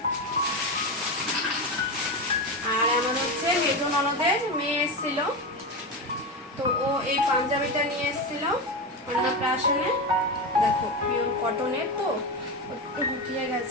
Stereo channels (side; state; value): both; normal; correlation 0.18